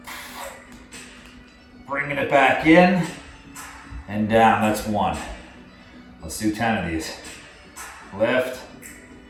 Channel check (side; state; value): both; identical; correlation 1.00